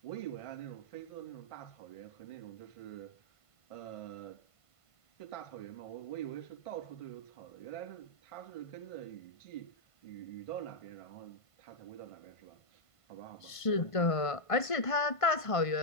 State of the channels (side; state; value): right; late; 1.5 ms